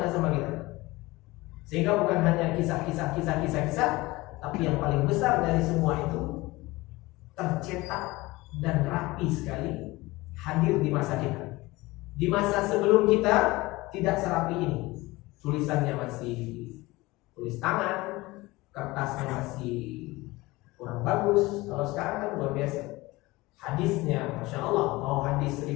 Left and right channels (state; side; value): quieter; right; 20.9 dB